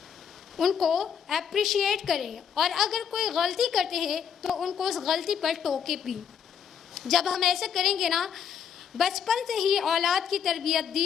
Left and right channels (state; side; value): quieter; right; 7.8 dB